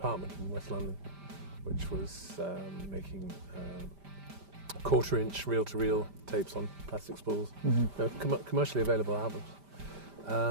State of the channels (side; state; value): left; late; 5.1 ms